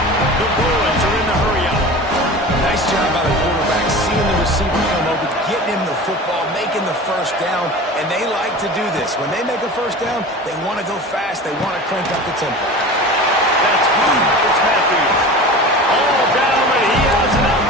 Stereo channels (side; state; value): both; normal; correlation 0.35